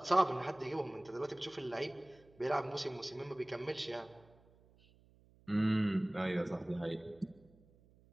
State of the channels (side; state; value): right; noise; hum, 28 dB below the sound